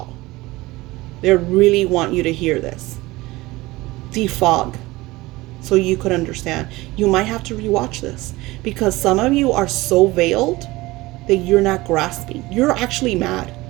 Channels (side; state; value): left; quieter; 20.1 dB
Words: They really want you to hear this. Defog, so you could understand. You might have to rewatch this, because some of you are so veiled that you're not grasping. You're actually mad.